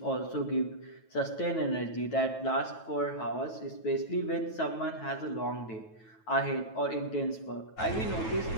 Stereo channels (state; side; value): late; right; 9.2 ms